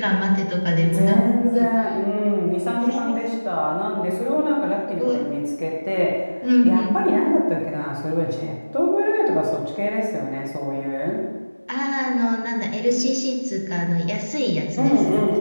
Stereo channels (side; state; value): both; inverted; correlation -1.00